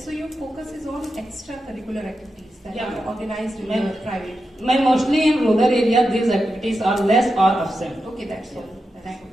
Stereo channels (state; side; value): normal; both; correlation 0.89